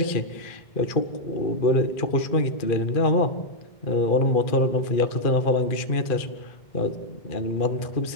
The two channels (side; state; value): right; late; 2.4 ms